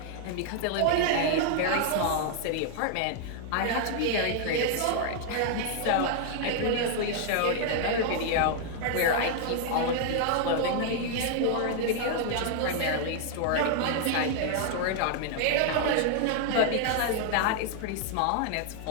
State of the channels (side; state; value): both; different; correlation 0.00